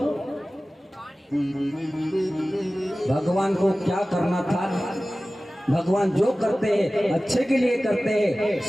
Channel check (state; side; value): normal; both; correlation 0.97